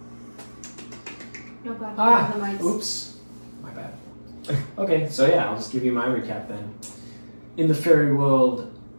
No god, the mics. oops. My bad. Okay, so yeah, I'll just give you my recap then. In the fairy world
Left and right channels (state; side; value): inverted; both; correlation -1.00